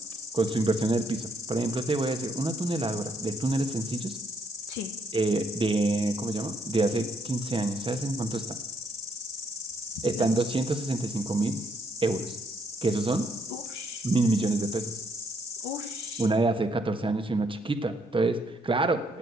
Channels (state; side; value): normal; both; correlation 0.72